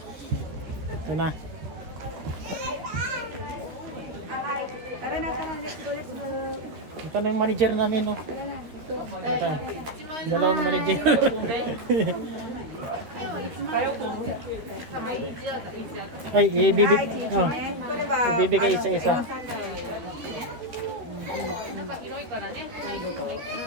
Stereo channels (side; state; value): left; late; 13 ms